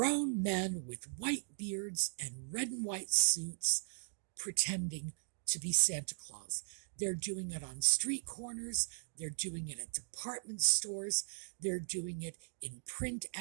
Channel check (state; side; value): silent; left; digital silence